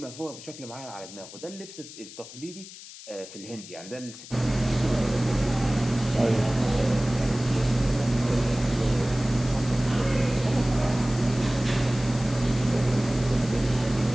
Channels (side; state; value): left; noise; hiss, 15 dB below the sound